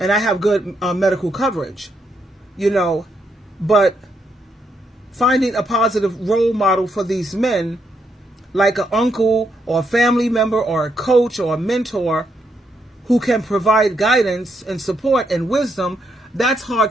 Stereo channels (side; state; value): both; normal; correlation 0.78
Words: And I have good medical coverage, you know. But finding a positive role model for these men, like an uncle or a family member or a coach or a mentor who can provide guidance and support and wisdom, that's hard